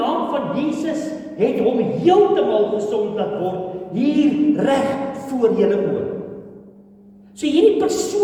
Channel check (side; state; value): both; identical; correlation 1.00